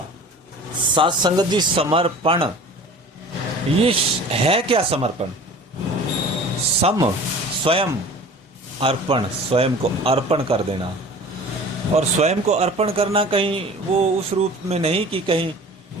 साध संगत जी, समर्पण ये है क्या? समर्पण स्वयं अर्पण, स्वयं को अर्पण कर देना। और स्वयं को अर्पण करना कहीं वो उस रूप में नहीं कि कहीं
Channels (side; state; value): both; normal; correlation 0.42